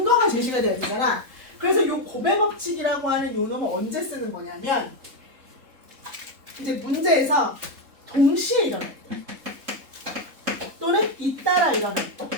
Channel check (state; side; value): late; left; 3.7 ms